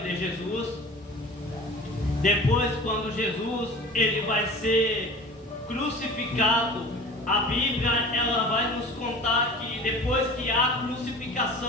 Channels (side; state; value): both; normal; correlation 0.40